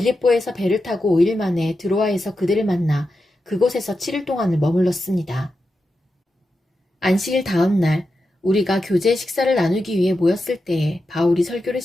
배를 타고 5일 만에 드로아에서 그들을 만나 그곳에서 7일 동안을 머물렀습니다. 안식일 다음 날 우리가 교제 식사를 나누기 위해 모였을 때에 바울이 설교를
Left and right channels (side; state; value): both; normal; correlation 0.89